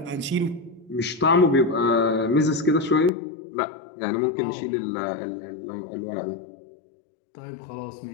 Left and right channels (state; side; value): drops out; right; at 3.1 s